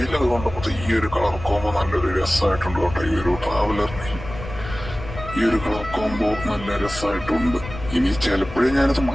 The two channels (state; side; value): noise; left; rumble, 12 dB below the sound